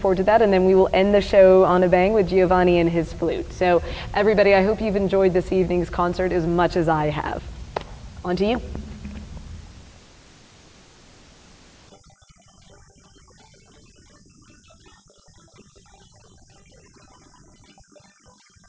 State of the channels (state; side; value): identical; both; correlation 1.00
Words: to that. And then we will end the show on a bang with Giovanni and his flute. So everybody, I hope you've enjoyed this evening's concert as much as I have. On to you.